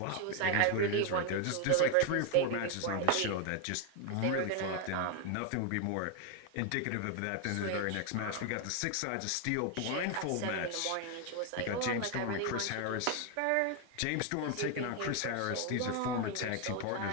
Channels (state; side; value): different; both; correlation 0.01